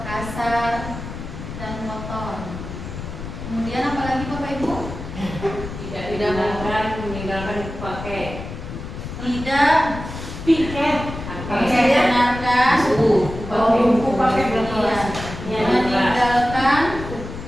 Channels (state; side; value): noise; left; rumble, 9 dB below the sound